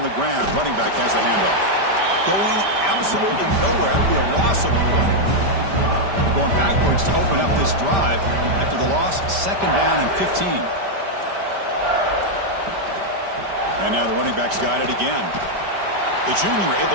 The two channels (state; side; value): late; left; 5.1 ms